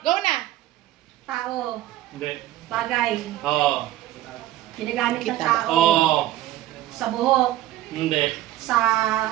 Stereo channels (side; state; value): left; quieter; 14.5 dB